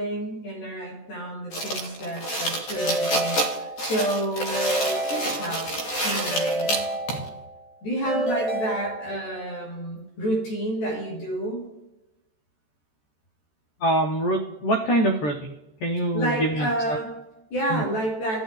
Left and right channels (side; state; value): right; late; 14 ms